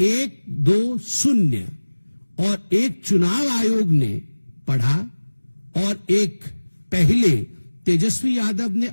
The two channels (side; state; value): both; inverted; correlation -1.00